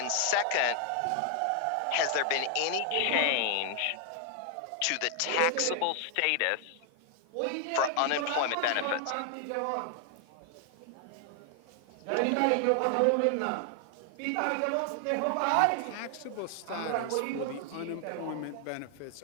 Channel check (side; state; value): both; different; correlation 0.00